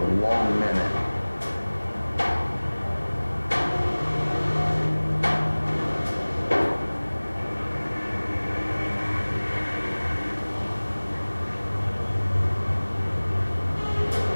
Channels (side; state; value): both; inverted; correlation -1.00